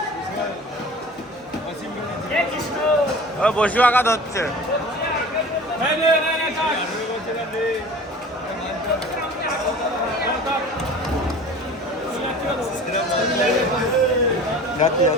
ও বসু আঘা ধরছে।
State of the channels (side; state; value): both; normal; correlation 0.41